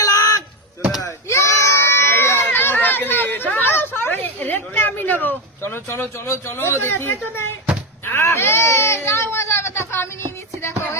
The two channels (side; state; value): both; normal; correlation 0.09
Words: লাখ। আমি নেবো। চলো চলো চলো চলো দেখি। আমি নিয়ে নিচ্ছি, দেখো